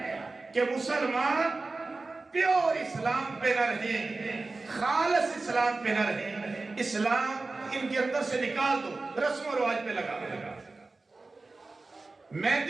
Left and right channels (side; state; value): left; quieter; 3.5 dB